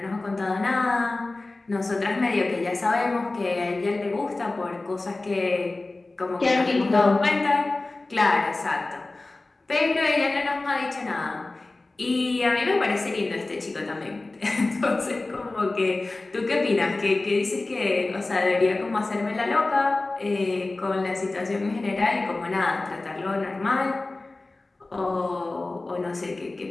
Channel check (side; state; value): right; quieter; 3.1 dB